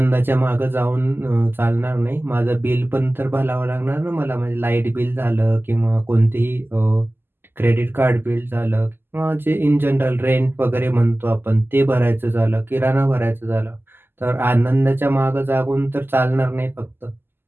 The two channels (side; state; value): left; late; 0.10 ms